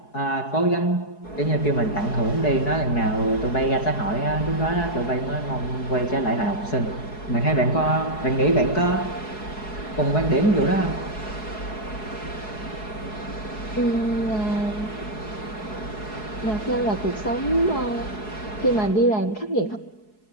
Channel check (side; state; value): right; late; 4.7 ms